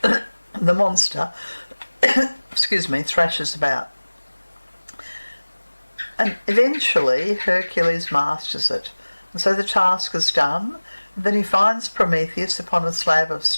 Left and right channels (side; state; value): both; inverted; correlation -1.00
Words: the monster, thrashes about. And eventually Hercules masters it. And so the task is done. And then he finds Prometheus upon a slab of